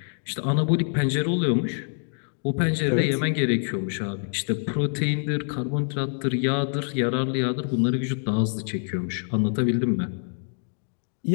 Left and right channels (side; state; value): right; silent; 61 dB below the other